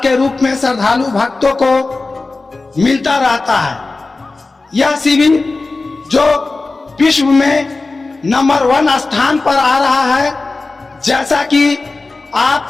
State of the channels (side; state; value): right; quieter; 3.5 dB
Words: के रूप में श्रद्धालु भक्तों को मिलता रहता है। यह शिविर जो विश्व में नंबर 1 स्थान पर आ रहा है, जैसा कि